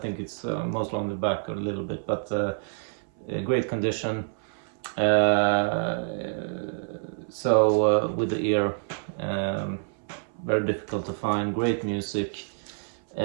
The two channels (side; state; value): left; silent; 60 dB below the other